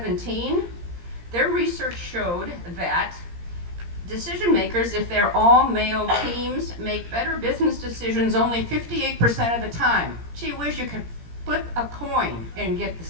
their research showed that decision makers, if they're all male teams, make better business decisions only 58% of the time. Gee whiz, you could flip a coin and get the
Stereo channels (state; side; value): late; left; 17 ms